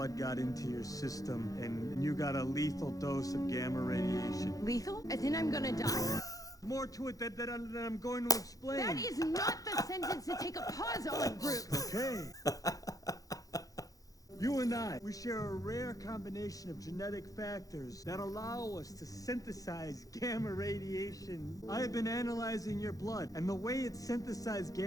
got into your system, and you got a lethal dose of gamma radiation. Lethal? As in I'm gonna die? More to it that I'm going to explain. That is not the sentence to take a pause on, Bruce. Okay. You and I, we share a rare combination of genetic factors that allow us to synthesize gamma radiation. I have been analyzing your blood, and the way it synthesized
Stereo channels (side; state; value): right; late; 0.17 ms